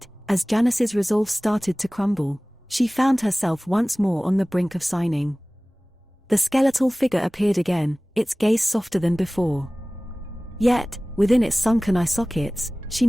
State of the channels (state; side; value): normal; both; correlation 0.98